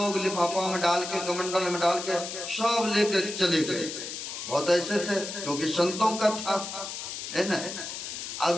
लिफाफा में डाल के कमंडल में डाल के सब लेकर चले गए। बहुत ऐसे थे क्योंकि संतों का था है ना। अब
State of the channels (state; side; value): noise; left; hiss, 7 dB below the sound